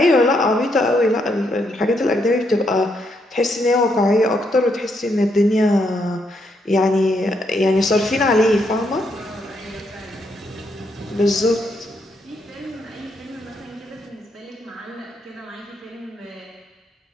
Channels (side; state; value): both; normal; correlation 0.77